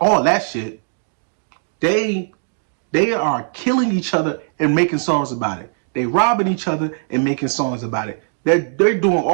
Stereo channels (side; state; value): left; silent; digital silence